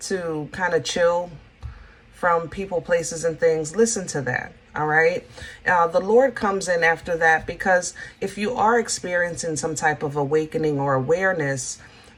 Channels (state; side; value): identical; both; correlation 1.00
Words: kind of chill from people, places, and things, listen to that. All right. The Lord comes in after that, because if you are experiencing some type of awakening or awareness,